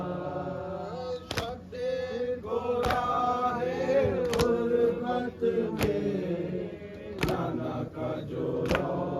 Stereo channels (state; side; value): identical; both; correlation 1.00